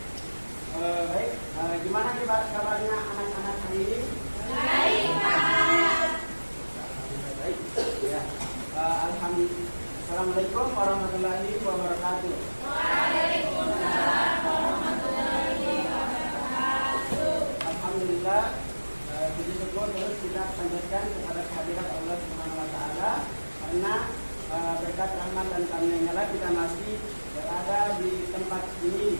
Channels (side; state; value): both; inverted; correlation -1.00